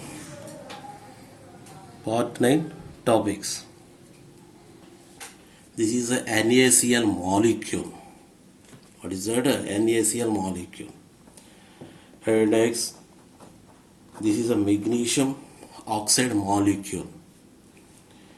Part 9 topics. This is a NaCl molecule. What is that? NaCl molecule. And next, this is a magnesium oxide molecule.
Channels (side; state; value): both; identical; correlation 1.00